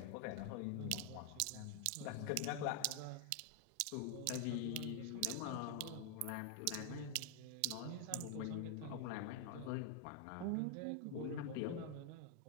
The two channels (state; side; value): different; both; correlation 0.00